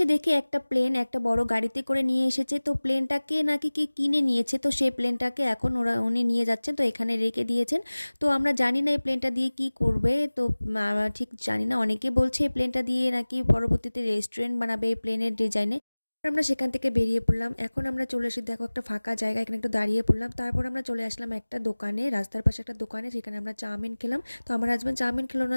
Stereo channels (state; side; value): inverted; both; correlation -1.00